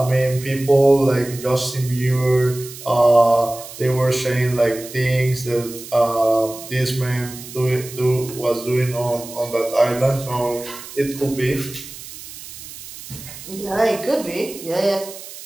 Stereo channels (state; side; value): noise; right; hiss, 14 dB below the sound